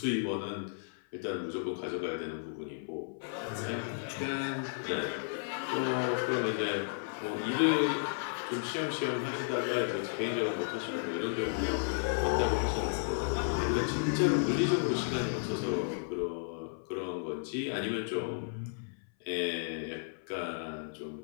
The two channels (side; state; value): right; silent; 55 dB below the other